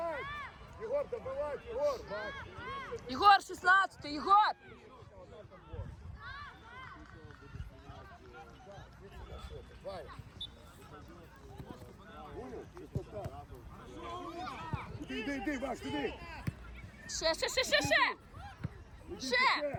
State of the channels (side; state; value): both; identical; correlation 1.00